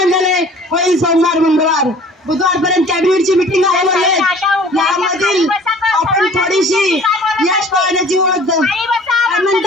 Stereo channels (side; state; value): both; normal; correlation 0.49